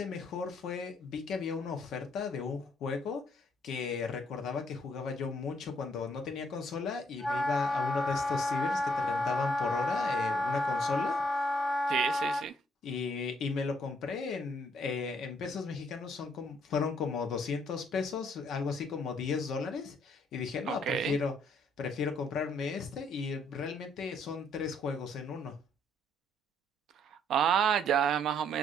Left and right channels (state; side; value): normal; both; correlation 0.68